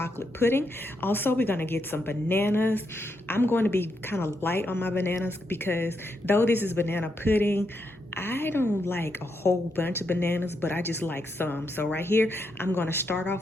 pudding. Also, we're gonna get some bananas. I'm going to be kind of light on my bananas because though this is banana pudding, I don't like a whole bunch of bananas, but I just like some. So right here, I'm going to start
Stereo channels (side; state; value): both; normal; correlation 0.81